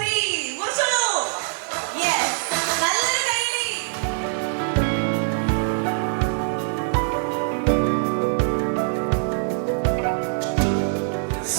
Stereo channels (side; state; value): left; silent; digital silence